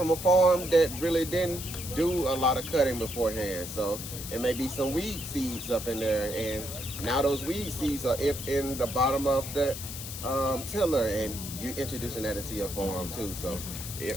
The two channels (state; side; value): noise; left; hiss, 9 dB below the sound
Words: a farm that really didn't do a lot of cutting beforehand, so it may be some weed seeds up in there, and now those weed seeds are in the bottom of the tiller, and you're introducing that into your farm too. So